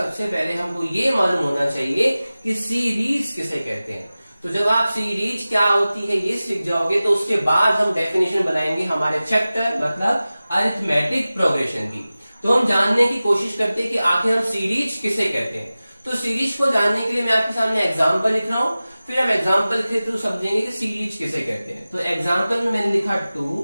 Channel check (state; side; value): inverted; both; correlation -0.97